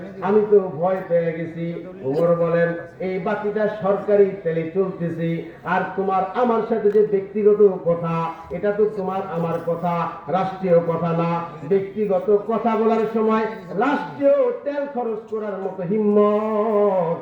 আমি তো ভয় পেয়ে গেছি। ওমর বলেন, এই বাতিটা সরকারি তেলে চলতেছে, আর তোমার আমার সাথে যে ব্যক্তিগত কথা, এটা তো তোমার আমার কথা, রাষ্ট্রীয় কথা না। ব্যক্তিগত কথা বলার সময় রাষ্ট্রীয় তেল খরচ করার মতো হিম্মত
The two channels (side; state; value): both; identical; correlation 1.00